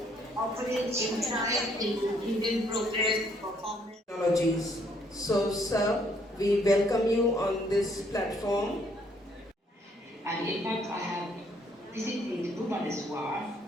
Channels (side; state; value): both; normal; correlation 0.67